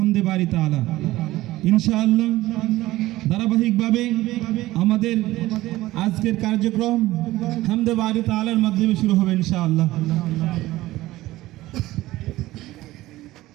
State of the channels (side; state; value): left; quieter; 17.0 dB